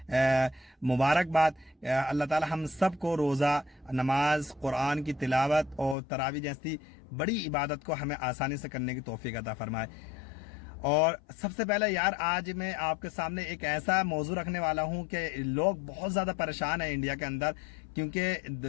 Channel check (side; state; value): right; drops out; at 6.0 s